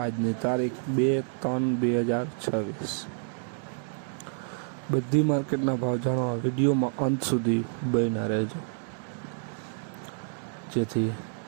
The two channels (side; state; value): left; silent; digital silence